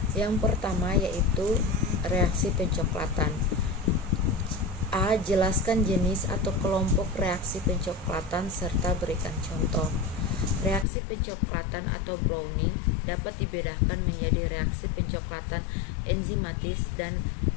Yang pertama yaitu reaksi pencoklatan. A. Jelaskan jenis atau kelompok reaksi pencoklatan serta berikan contoh. Reaksi pencoklatan atau browning dapat dibedakan menjadi reaksi pencoklatan enzimatis dan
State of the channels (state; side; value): drops out; right; at 10.9 s